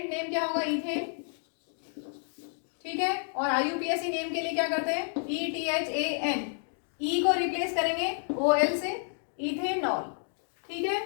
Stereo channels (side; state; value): right; silent; 58 dB below the other